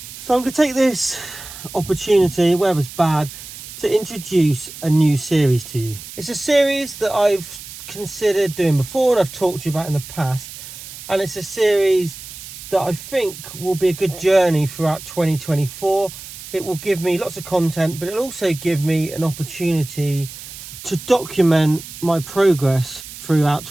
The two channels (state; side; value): noise; right; hiss, 13 dB below the sound